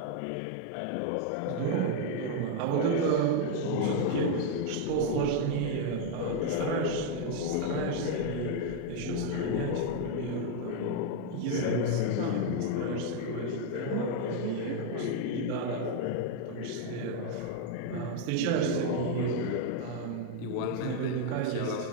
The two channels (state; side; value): different; both; correlation 0.00